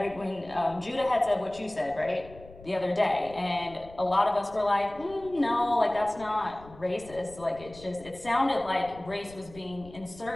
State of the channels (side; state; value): left; noise; rumble, 20 dB below the sound